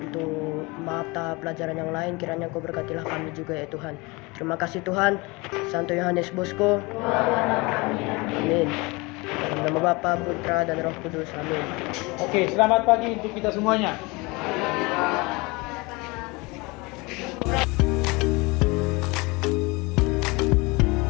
mata pelajaran yang lain. Kiranya Engkau berkatilah kami juga ya Tuhan. Terima kasih Tuhan. Santo Yohanes Bosco. Amin. Dalam nama Bapa, Putra, dan Roh Kudus. Amin. Oke, selamat pagi untuk kita semuanya.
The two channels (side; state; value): right; quieter; 25.5 dB